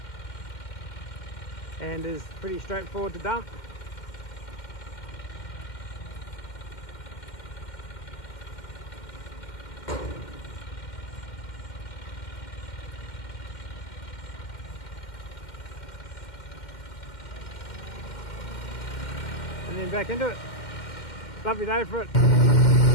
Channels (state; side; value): late; right; 2.1 ms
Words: And is pretty straightforward to dump. And then back into it. Lovely day for it.